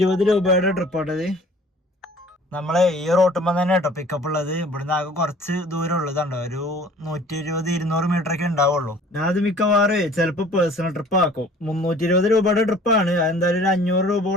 രൂപയുടെ ട്രിപ്പ് ആട്ടത്. നമ്മളെ ഈ റോട്ടുമ്പോ തന്നെ കേട്ടോ പിക്കപ്പ് ഉള്ളത്. ഇവിടുന്ന് ആകെ കുറച്ച് ദൂരം ഉള്ളതുണ്ടോ, ഒരു 120-200 മീറ്റർ ഒക്കെ ഉണ്ടാവുള്ളൂ. ഞാൻ അത് മിക്കവാറും ചിലപ്പോ പേഴ്സണൽ ട്രിപ്പ് ആക്കും. 320 രൂപയുടെ ട്രിപ്പാണ്. അതെന്തായാലും ഒരു 500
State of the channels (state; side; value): normal; both; correlation 0.50